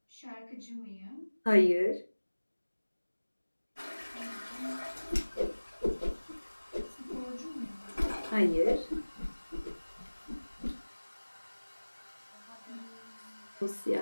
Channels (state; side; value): inverted; both; correlation -1.00